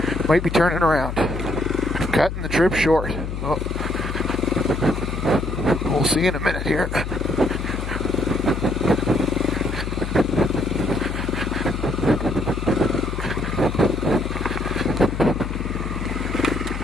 Might be turning around. Cutting the trip short. Oh. We'll see in a minute here.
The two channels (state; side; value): noise; left; hum, 5 dB below the sound